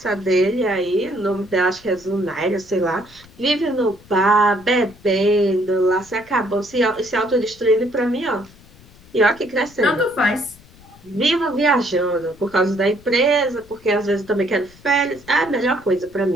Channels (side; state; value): left; noise; rumble, 24 dB below the sound